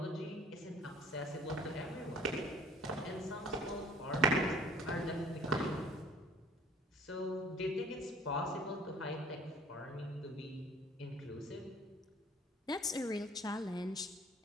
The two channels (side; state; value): both; normal; correlation 0.52